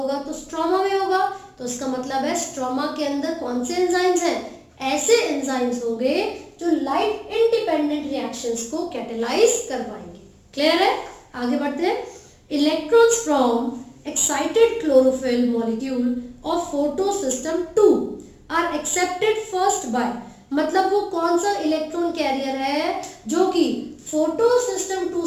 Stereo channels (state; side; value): identical; both; correlation 1.00